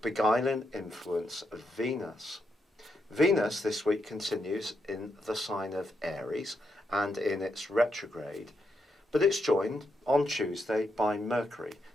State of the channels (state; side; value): normal; both; correlation 0.81